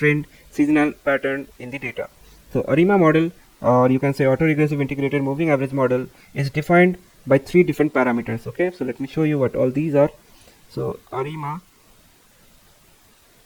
seasonal pattern in the data. So ARIMA model, or you can say auto-regressive integrated moving average model, is defined by three different parameters. Okay, so let me show you what all these are. So ARIMA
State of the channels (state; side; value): identical; both; correlation 1.00